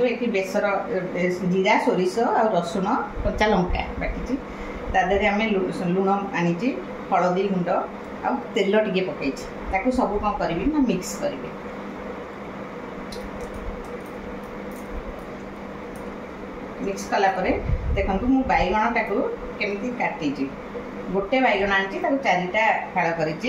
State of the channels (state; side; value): identical; both; correlation 1.00